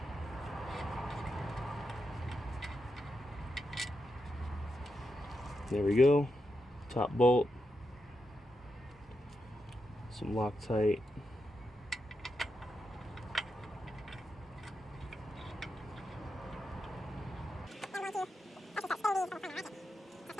There we go, top bolt, some Loctite,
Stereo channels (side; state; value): both; normal; correlation 0.86